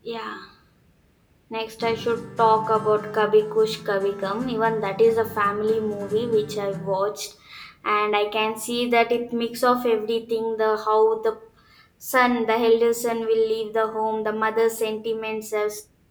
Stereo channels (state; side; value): identical; both; correlation 1.00